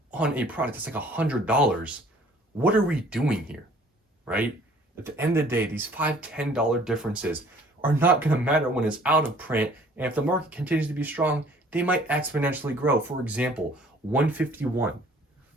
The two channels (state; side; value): normal; both; correlation 0.55